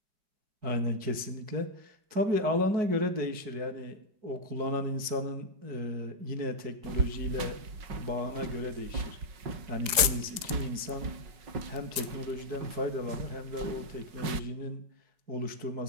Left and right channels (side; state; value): left; late; 4.9 ms